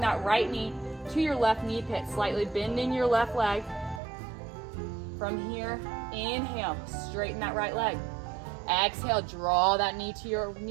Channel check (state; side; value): drops out; left; at 4.0 s